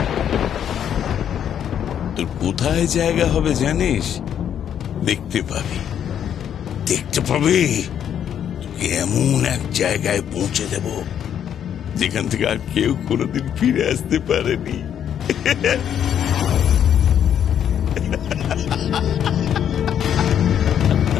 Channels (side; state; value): right; quieter; 9.3 dB